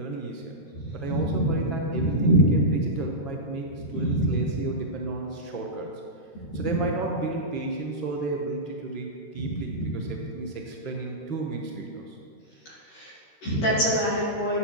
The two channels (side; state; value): right; late; 13 ms